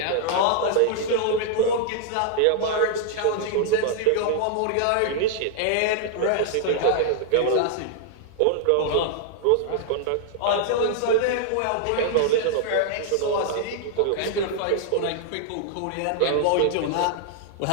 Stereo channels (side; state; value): both; different; correlation -0.01